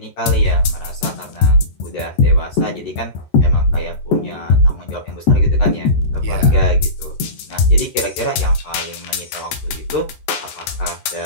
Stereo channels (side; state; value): right; late; 14 ms